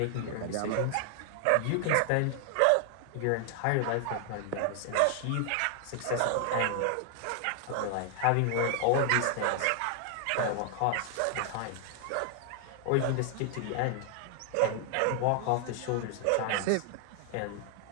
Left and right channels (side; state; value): both; different; correlation 0.00